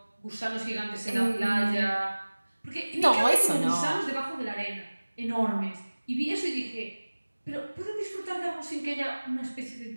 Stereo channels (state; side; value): inverted; both; correlation -1.00